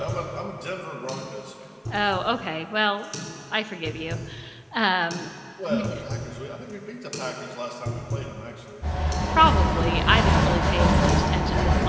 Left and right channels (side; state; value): both; identical; correlation 1.00